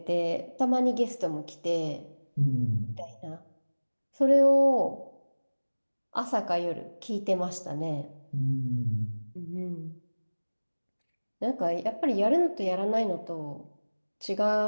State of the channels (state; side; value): inverted; both; correlation -1.00